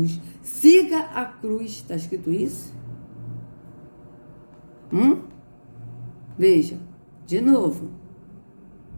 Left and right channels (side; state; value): both; inverted; correlation -1.00